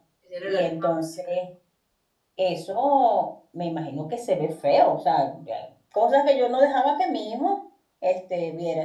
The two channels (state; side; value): identical; both; correlation 1.00